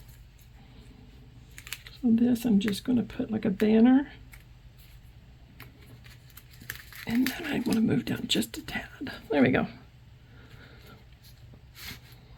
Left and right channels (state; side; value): identical; both; correlation 1.00